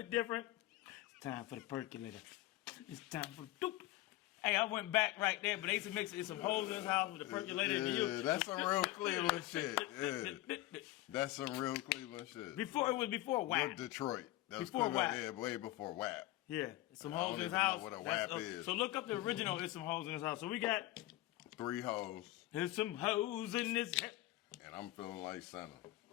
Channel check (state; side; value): quieter; right; 16.9 dB